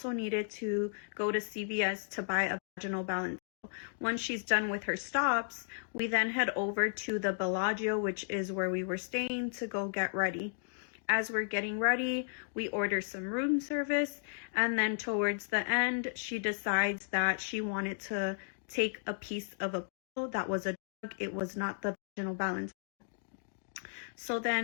needed to go to CVS to buy a vaginal balance. Once she's done with her stops, we then head over to the Bellagio, which is where we were staying, to go get ready. As we're getting ready, we order some room service, and then towards the end, she decides that she wanted to take a piece of a pill that was a drug. It was not the vaginal balance. So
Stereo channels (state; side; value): silent; right; digital silence